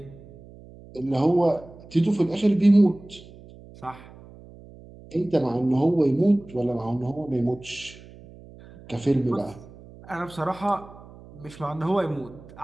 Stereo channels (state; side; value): noise; right; hum, 20 dB below the sound